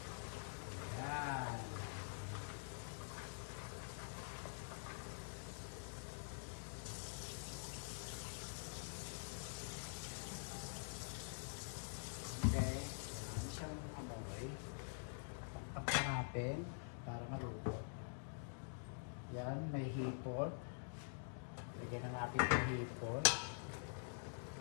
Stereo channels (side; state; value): right; silent; digital silence